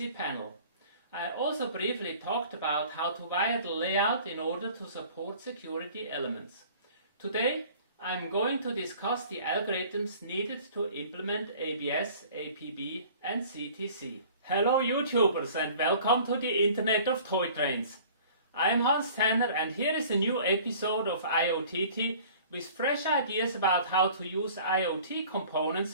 panel. I also briefly talked about how to wire the layout in order to support security elements. Today I'm going to discuss the algorithms needed to implement ABS, APB and CTC. Hello YouTubers and welcome to the Internet of Toy Trains. I am Hans Tanner and here is a new episode of IoTT with fresh ideas about how to use IoT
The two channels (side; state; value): both; inverted; correlation -0.48